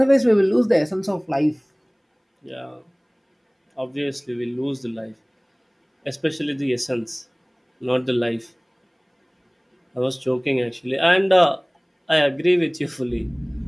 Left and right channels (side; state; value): both; identical; correlation 1.00